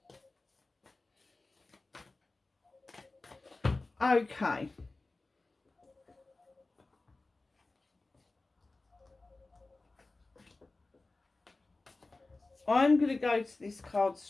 Okay. I'm going to go to this card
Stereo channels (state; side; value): quieter; right; 3.3 dB